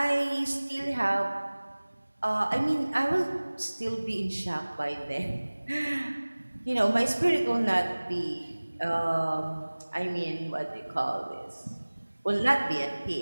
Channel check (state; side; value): inverted; both; correlation -1.00